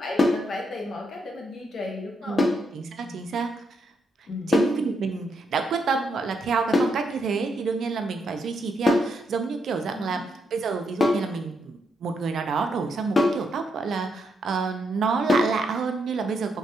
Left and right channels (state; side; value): normal; both; correlation 0.79